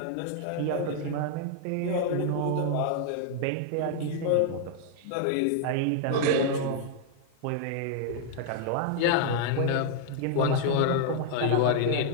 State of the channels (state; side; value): different; both; correlation 0.00